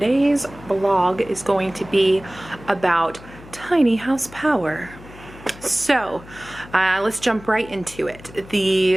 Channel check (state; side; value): noise; left; hum, 19 dB below the sound